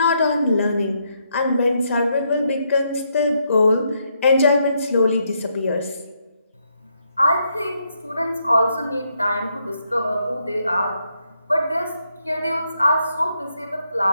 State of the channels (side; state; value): both; inverted; correlation -0.77